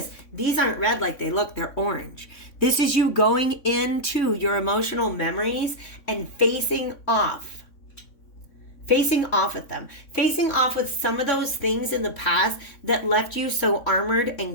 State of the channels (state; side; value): late; right; 3.6 ms